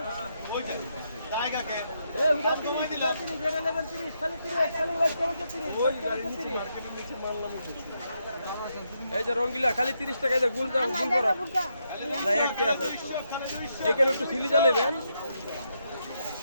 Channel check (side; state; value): both; inverted; correlation -0.80